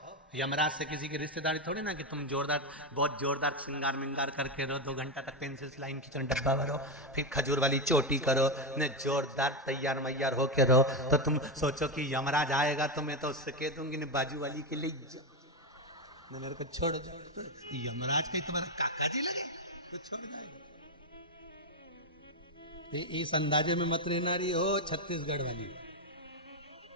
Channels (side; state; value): both; normal; correlation 0.09